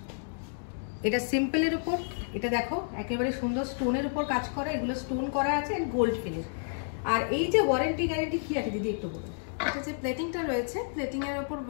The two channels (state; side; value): silent; right; digital silence